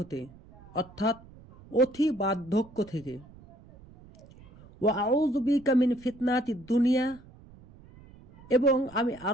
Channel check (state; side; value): noise; right; rumble, 23 dB below the sound